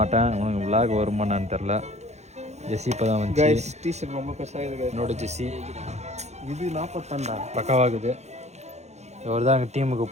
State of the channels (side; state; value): left; late; 0.32 ms